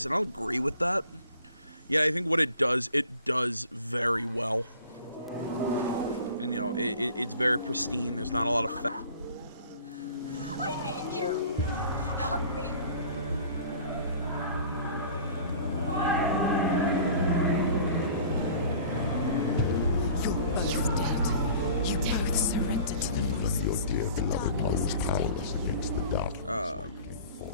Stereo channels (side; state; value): both; inverted; correlation -0.46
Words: and I'll agree with that. Yeah, I think what it does very well, and you know, it's very pristine. There's not a lot of fat. I need you! Help me! You're both dead. You both surrendered to the voices. Your dear beloved mother's powerless against the dark.